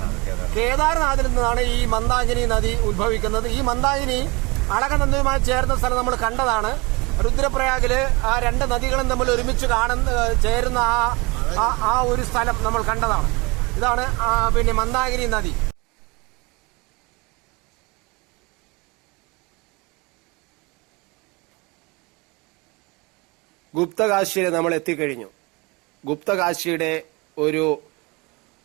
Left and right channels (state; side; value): quieter; left; 26.4 dB